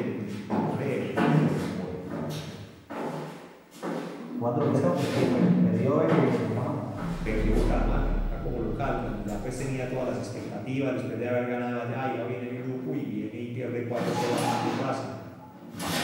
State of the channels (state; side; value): identical; both; correlation 1.00